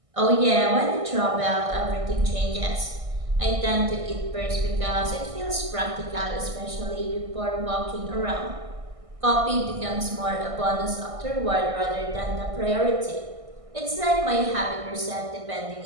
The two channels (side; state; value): left; late; 1.6 ms